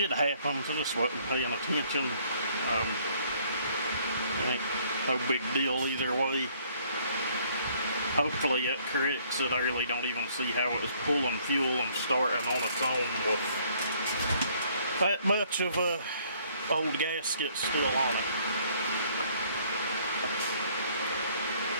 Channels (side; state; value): both; inverted; correlation -0.62